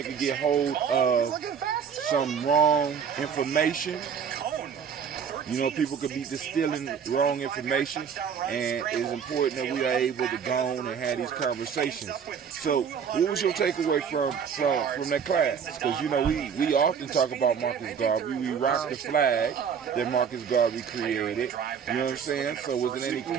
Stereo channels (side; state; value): left; quieter; 7.2 dB